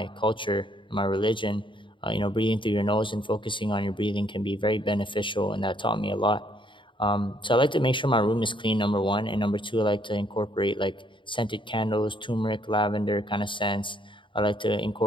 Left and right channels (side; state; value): right; late; 0.24 ms